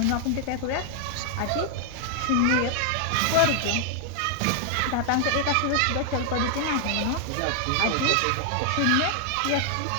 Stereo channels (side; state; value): both; different; correlation 0.00